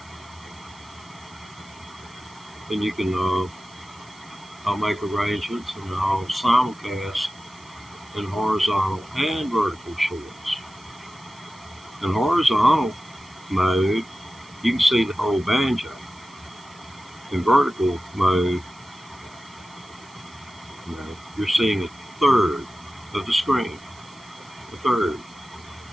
Then you can, I'll make arrangements and I'll simulcast in horizontal and vertical shorts. In horizontal mode, you can see the whole banjo. In vertical mode, you're seeing a third of the screen. A third.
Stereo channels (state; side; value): noise; right; hiss, 25 dB below the sound